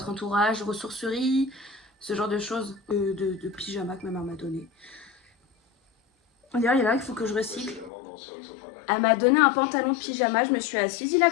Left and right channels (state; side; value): drops out; right; at 7.9 s